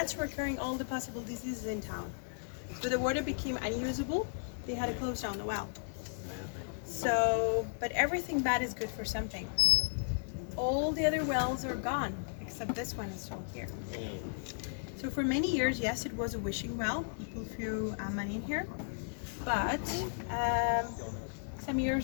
were carrying all the possible diseases in town. So the water became unusable. They had to close down the well. So, but everything bad is good for something. All the other wells are gone, except this one is still here. So for many years, yes, it was a wishing well. People threw money in here. But some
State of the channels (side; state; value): right; silent; digital silence